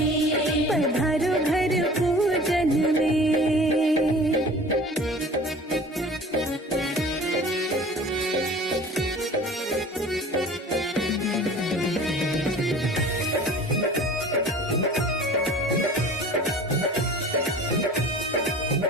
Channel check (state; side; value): normal; both; correlation 0.43